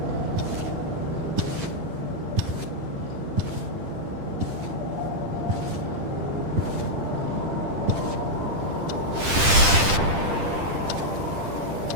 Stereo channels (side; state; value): left; late; 10 ms